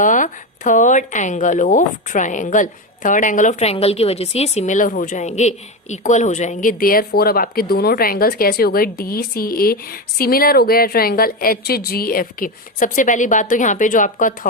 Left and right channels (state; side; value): normal; both; correlation 0.15